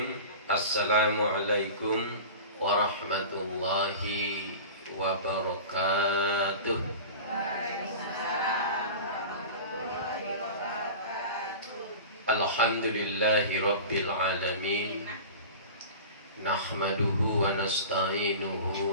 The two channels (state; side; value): inverted; both; correlation -0.34